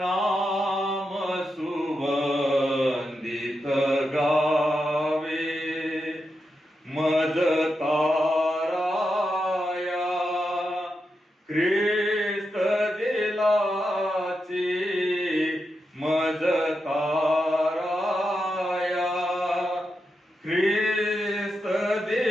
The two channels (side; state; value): both; normal; correlation 0.87